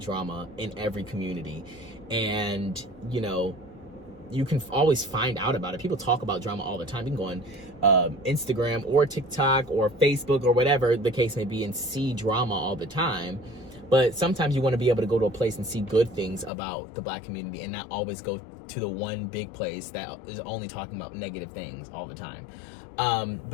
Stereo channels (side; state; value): right; drops out; at 16.5 s